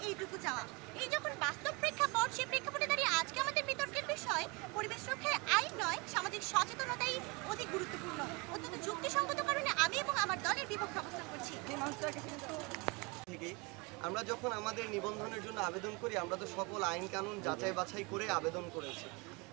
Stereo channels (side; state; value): left; quieter; 27.9 dB